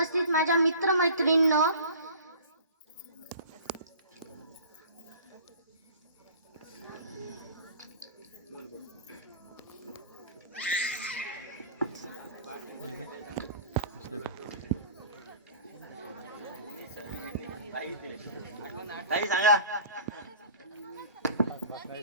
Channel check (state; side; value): inverted; both; correlation -0.43